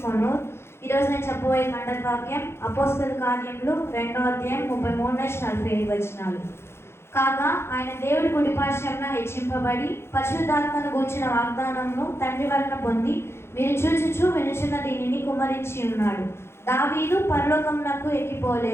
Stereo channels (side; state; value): right; late; 0.12 ms